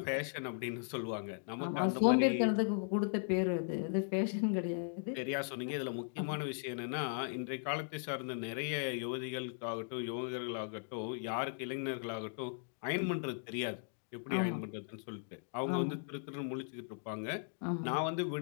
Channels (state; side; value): silent; right; digital silence